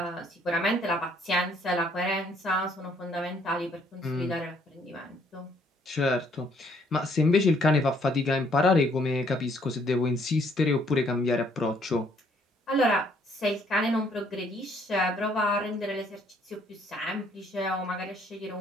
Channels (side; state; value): both; normal; correlation 0.66